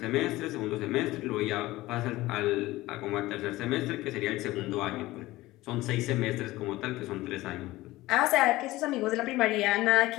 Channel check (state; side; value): quieter; right; 18.2 dB